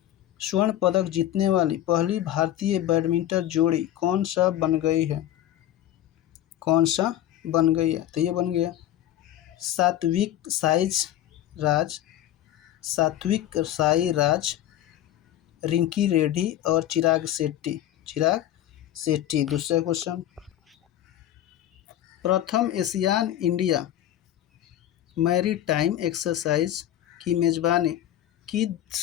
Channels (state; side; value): quieter; right; 12.5 dB